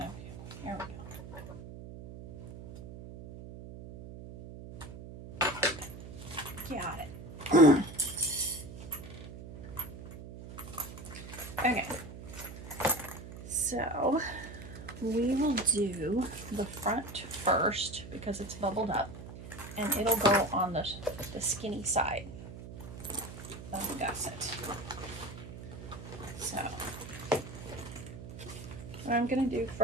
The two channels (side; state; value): right; noise; hum, 12 dB below the sound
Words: here we go. Got it. Okay. So we will do the front first because it's bubbled up, and it'll go on the skinny side of the gusset. So what I'm going to do